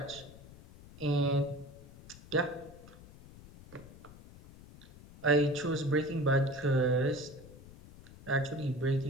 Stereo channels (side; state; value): left; noise; rumble, 19 dB below the sound